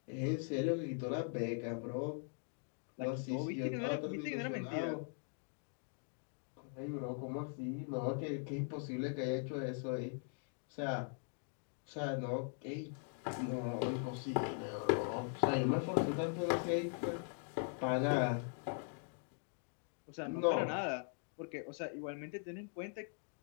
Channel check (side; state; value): right; silent; 50 dB below the other